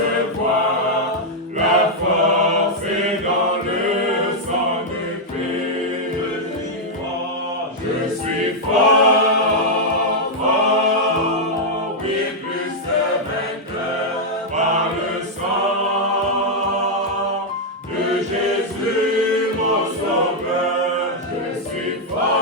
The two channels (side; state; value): both; normal; correlation -0.03